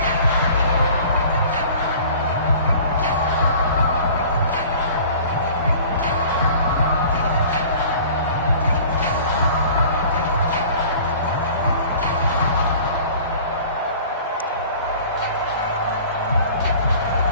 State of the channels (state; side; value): inverted; both; correlation -0.46